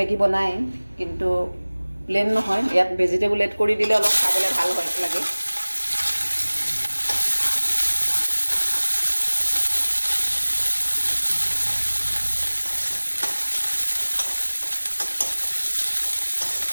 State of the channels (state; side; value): inverted; both; correlation -1.00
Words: বনায়, কিন্তু প্লেন নহয়, ইয়াত ভেজিটেবল এড কৰি দিলে অলপ খাবলৈ ভাল লাগে।